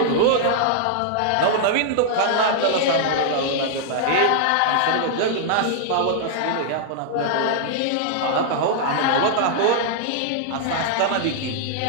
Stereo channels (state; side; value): different; both; correlation -0.01